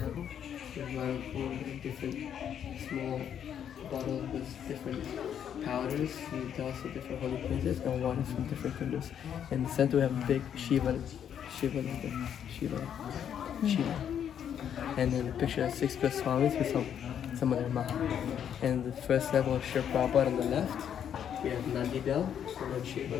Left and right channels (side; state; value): right; quieter; 9.0 dB